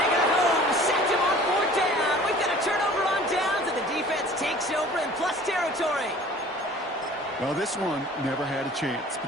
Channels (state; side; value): normal; both; correlation 0.47